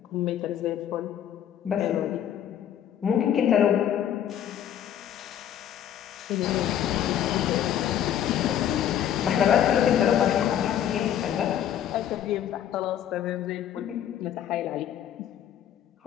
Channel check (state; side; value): quieter; right; 10.3 dB